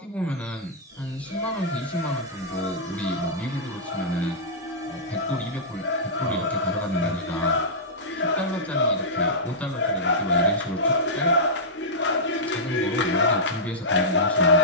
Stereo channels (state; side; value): normal; both; correlation -0.14